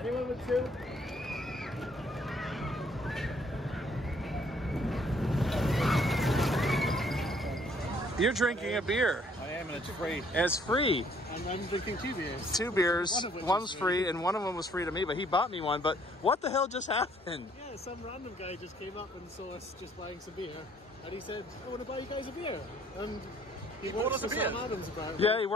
with 2? You're drinking a beer. I am, and it's free. And it's free. And I'm drinking 2 beers. 2 beers. One of which One's is free, and one of them was free to me, but he bought me one. But what the hell just happened? Yeah, some random guy just came up and saw us just buying some beer. And he said, I want to buy you guys a beer. And he works for Sam Adams apparently. Yeah, he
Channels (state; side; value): normal; both; correlation 0.62